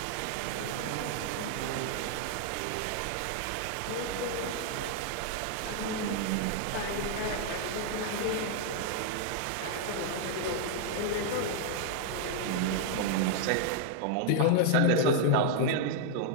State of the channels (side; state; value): both; different; correlation 0.00